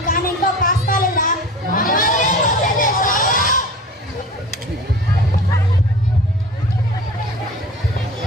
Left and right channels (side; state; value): both; normal; correlation 0.38